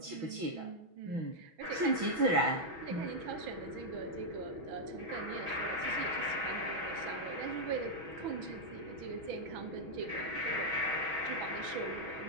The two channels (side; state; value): left; late; 6.2 ms